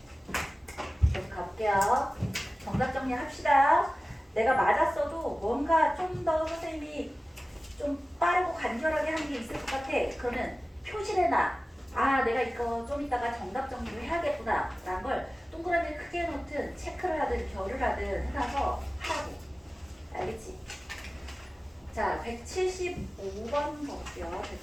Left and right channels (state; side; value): normal; both; correlation 0.96